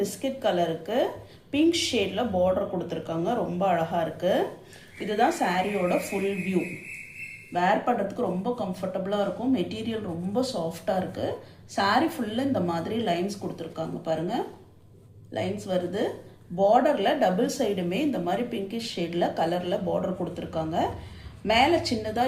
கலருக்கு பிங்க் ஷேடில் பார்டர் கொடுத்துருக்காங்க. ரொம்ப அழகாக இருக்குது. இதுதான் சாரியோட ஃபுல் வியூ. வேர் பண்ணுறதுக்கு ரொம்ப கம்ஃபர்டபுளாக இருக்கும். மெட்டீரியல் ரொம்ப சாஃப்டாக இருக்குது. சாரீ ஃபுல்லாக இந்த மாதிரி லைன்ஸ் கொடுத்துருக்காங்க பாருங்கள். லைன்ஸ் வருது. பார்டரில் டபுள் சைடுமே இந்த மாதிரி பிங்கிஷ் ஷேடில் கலரில் பார்டர் கொடுத்துருக்காங்க. மேலே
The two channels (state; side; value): identical; both; correlation 1.00